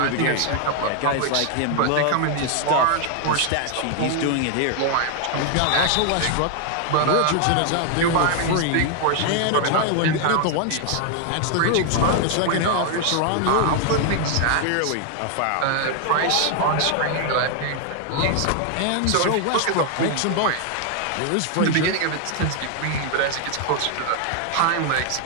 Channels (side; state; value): both; different; correlation 0.00